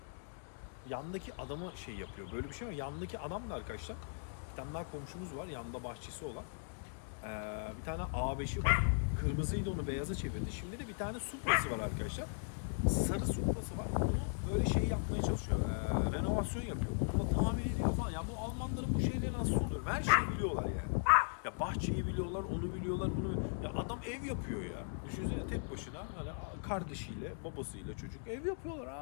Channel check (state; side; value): silent; right; digital silence